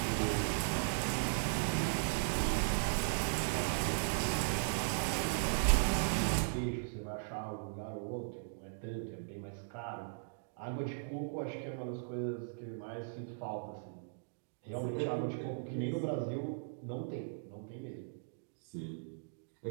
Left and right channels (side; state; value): left; silent; digital silence